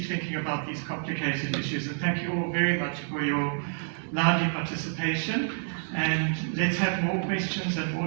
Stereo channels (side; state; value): left; silent; digital silence